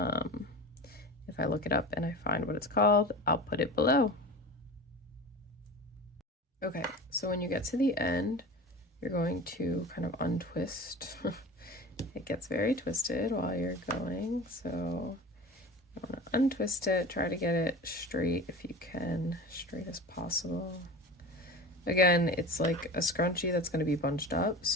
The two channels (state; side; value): normal; both; correlation 0.34